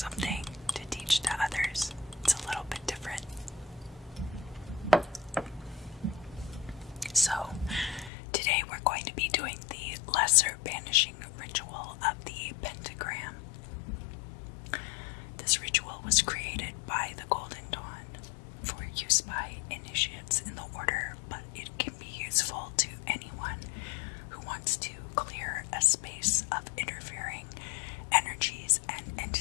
to teach to others, it's a little bit different. So, today we're going to be doing the lesser banishing ritual of the Pentagram. This ritual was created by the Golden Dawn for use by initiates in the order, but it can be useful to anyone who wants to clear a space of interfering energies and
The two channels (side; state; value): right; drops out; at 8.1 s